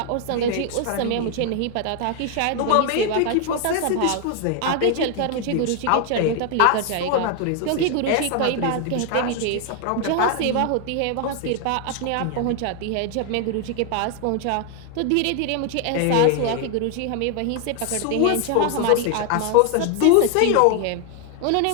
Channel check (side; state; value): both; different; correlation 0.01